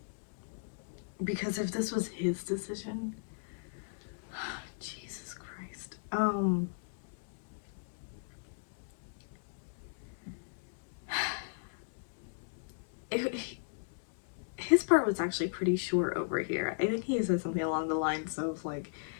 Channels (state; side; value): silent; right; digital silence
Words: Because if this was his decision, Jesus Christ. It, his part was actually pretty short over here. I think he said something along the lines of like,